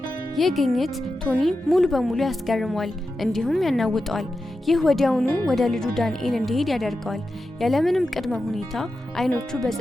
ይህ ግኝት ቶኒ ሙሉ በሙሉ ያስገርመዋል፣ እንዲሁም ያናውጠዋል። ይህ ወዲያውኑ ወደ ልጁ ዳንኤል እንዲሄድ ያደርገዋል። ያለምንም ቅድመ ሁኔታ አይኖቹ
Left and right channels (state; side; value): normal; both; correlation 0.91